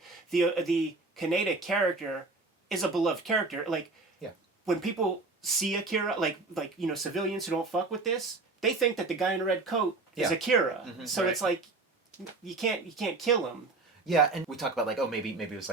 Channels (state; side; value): quieter; left; 3.6 dB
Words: The Kaneda character is a beloved character. Like, when people see Akira, like you know, civilians who don't fuck with this, they think that the guy in a red coat is Akira. Mm-hmm, so it's like you can't kill him. Yeah, and we talk about like, oh, maybe it was